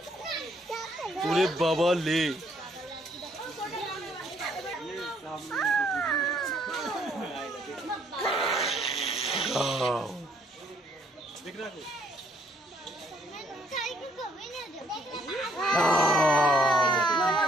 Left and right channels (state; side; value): normal; both; correlation 0.67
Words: ওরে বাবা লে